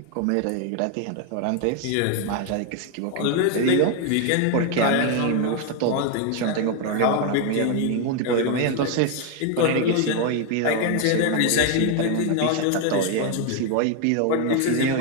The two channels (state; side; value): different; both; correlation 0.01